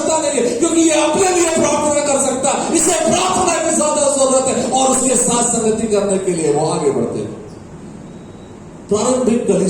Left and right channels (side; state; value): both; identical; correlation 1.00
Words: नहीं है, क्योंकि ये अपने लिए प्रार्थना कर सकता है। इसे प्रार्थना की ज्यादा जरूरत है और उसके साथ संगति करने के लिए वो आगे बढ़ते हैं। प्रारंभिक